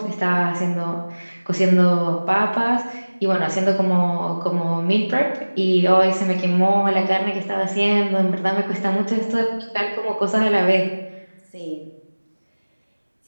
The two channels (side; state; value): both; inverted; correlation -1.00